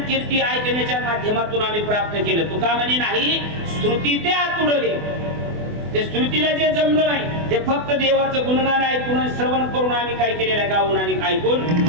कीर्ती ऐकण्याच्या माध्यमातून आम्ही प्राप्त केलं. तुका म्हणे नाही, श्रुती ते आतुडले. ते श्रुतीला जे जमलं नाही ते फक्त देवाचं गुणगान ऐकून श्रवण करून आम्ही काय केलेलं आहे, गाऊन आणि ऐकून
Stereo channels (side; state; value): left; late; 24 ms